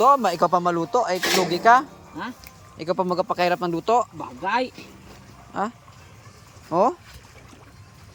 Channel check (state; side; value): identical; both; correlation 1.00